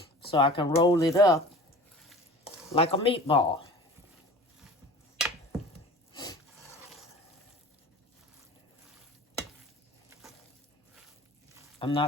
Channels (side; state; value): both; normal; correlation 0.40